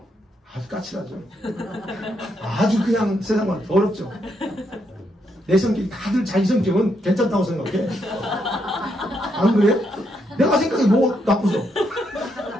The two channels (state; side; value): normal; both; correlation 0.78